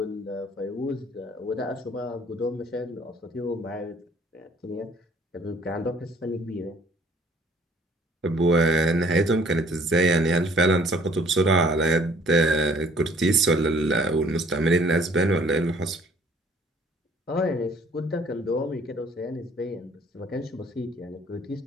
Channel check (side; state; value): both; normal; correlation 0.58